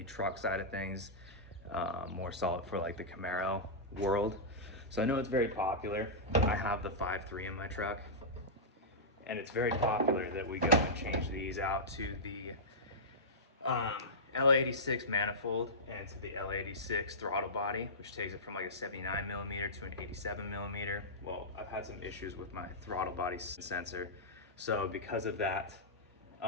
truck side of things, more solid for like the Camaro world. So I know it's very popular. I have the 5.3 in my truck, and it's very popular that we go and change these out to the L86 manifold and to the L86 throttle body, which takes it from like a 79 millimeter to an 87 millimeter. Well, I've had some issues with my throttle body sensor, so because of that,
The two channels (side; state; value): both; normal; correlation -0.14